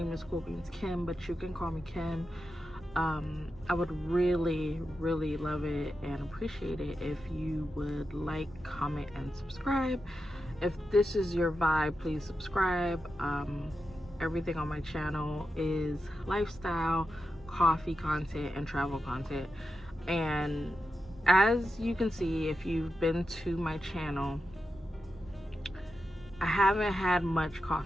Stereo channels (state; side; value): normal; both; correlation 0.89